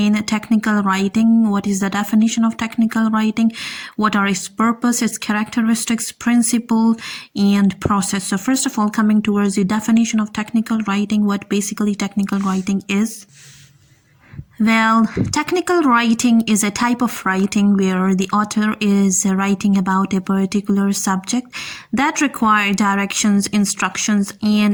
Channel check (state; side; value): identical; both; correlation 1.00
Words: technical writing. What is the definition of technical writing, what are its purpose, its characteristics, principle and process. So first of all, coming towards the definition of technical writing, what basically technical writing is. Well, technical writing is a type of writing where the author is writing about a particular subject that require directions, instructions,